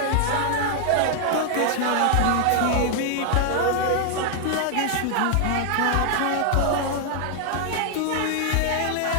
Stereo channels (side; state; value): both; different; correlation 0.00